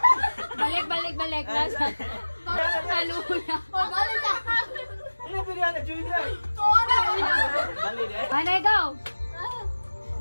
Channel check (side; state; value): both; inverted; correlation -1.00